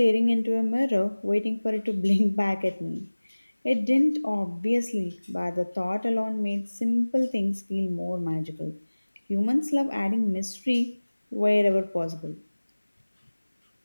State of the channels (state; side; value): inverted; both; correlation -1.00